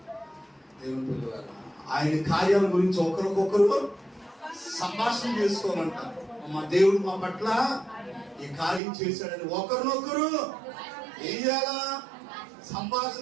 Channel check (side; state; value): left; drops out; at 8.8 s